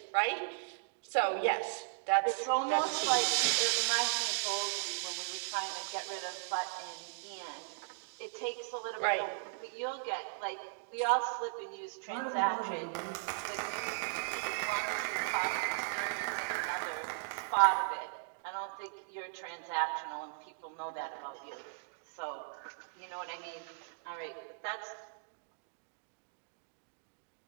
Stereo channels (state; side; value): silent; left; digital silence